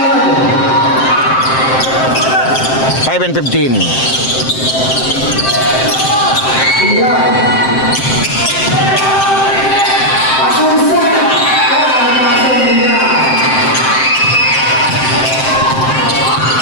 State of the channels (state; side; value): late; right; 7.7 ms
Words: Five and 15.